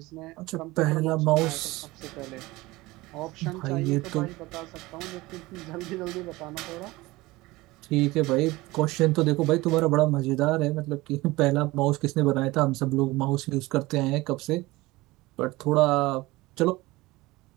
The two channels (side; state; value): left; quieter; 20.4 dB